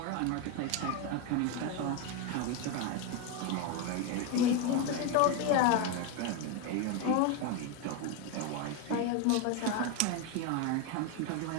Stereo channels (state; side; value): different; both; correlation 0.02